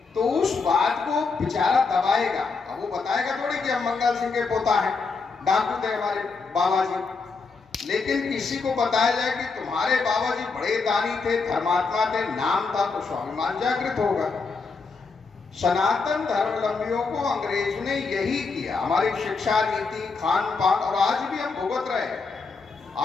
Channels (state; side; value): quieter; right; 4.5 dB